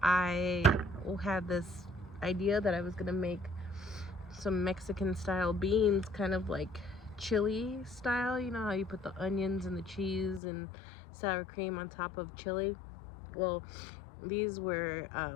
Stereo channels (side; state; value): right; drops out; at 10.4 s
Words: I had this idea that I was gonna make some Mexican style beans, kind of like chili style. You know how you put the onions and the cheese and sour cream on top of chili? Well, these were